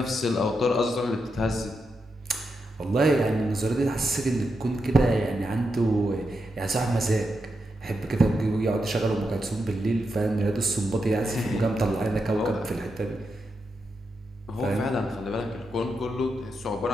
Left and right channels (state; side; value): normal; both; correlation 0.85